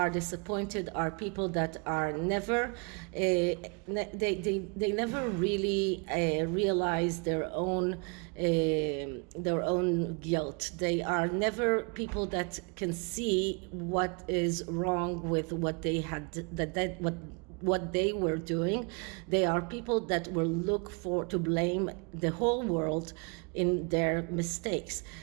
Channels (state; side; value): quieter; left; 33.4 dB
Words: disappointed are people that are never they never really realize their own guilt. They are never people that can see what is wrong with what they had, what they were doing. They are people that will look to blame the whole world in their mistakes.